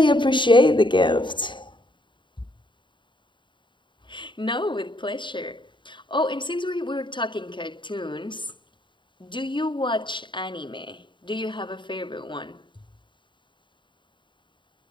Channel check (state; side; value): late; right; 0.23 ms